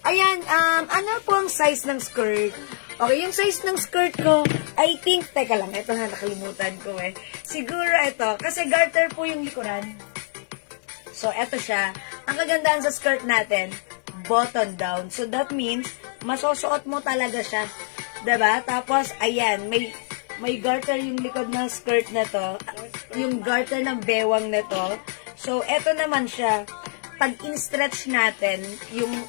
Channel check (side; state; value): right; silent; 62 dB below the other